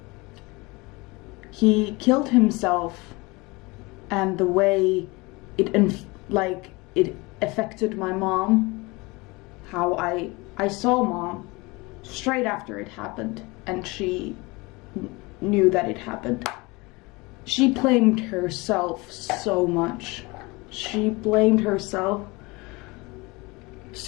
He killed himself, and the way it affected my mom, how I saw mom straight after it happened, and she knew that it happened. She blamed herself so much. She blamed herself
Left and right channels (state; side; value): quieter; right; 24.6 dB